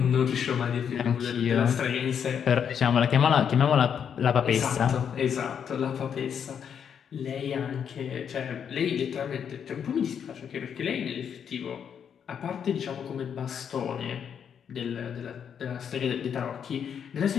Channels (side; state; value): right; quieter; 7.8 dB